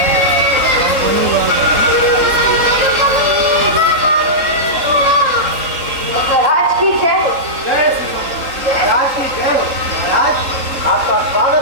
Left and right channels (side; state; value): left; late; 3.7 ms